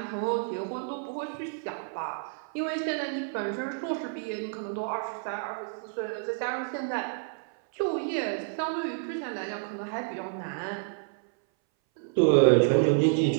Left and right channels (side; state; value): left; silent; 58 dB below the other